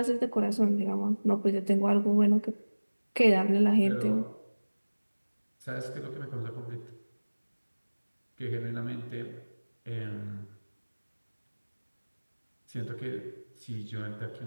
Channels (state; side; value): inverted; both; correlation -1.00